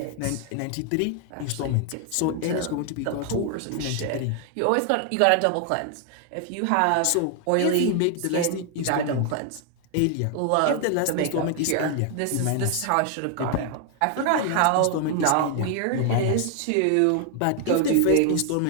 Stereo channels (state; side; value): different; both; correlation 0.00